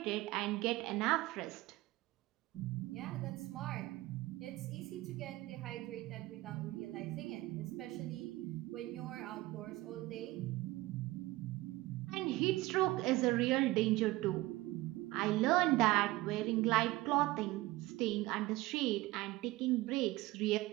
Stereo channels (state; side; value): quieter; left; 18.8 dB